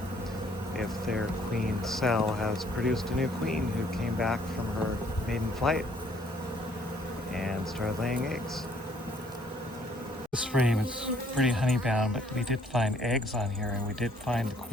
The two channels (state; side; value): normal; both; correlation 0.63